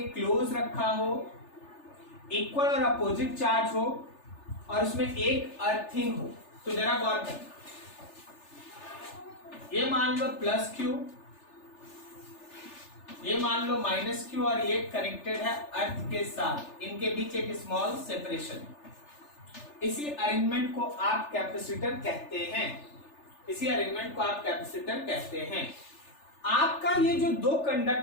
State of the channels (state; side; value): late; right; 3.4 ms